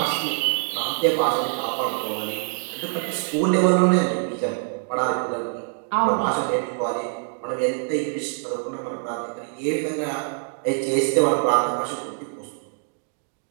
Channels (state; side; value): silent; left; 62 dB below the other